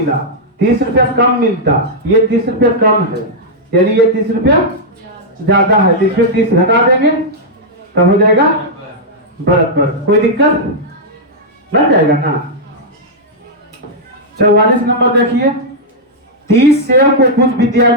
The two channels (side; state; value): both; normal; correlation -0.06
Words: 30 रुपया कम मिलता। ये 30 रुपया कम है, यानी ये 30 रुपया ज्यादा है, तो इसमें 30 घटा देंगे तब हो जाएगा बराबर। कोई दिक्कत लग जाएगा ना। 44 नंबर देखिए, 30 सेव को कुछ